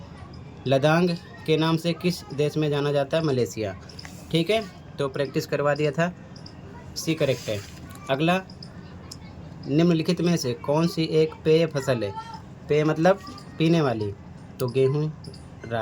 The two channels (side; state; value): both; identical; correlation 1.00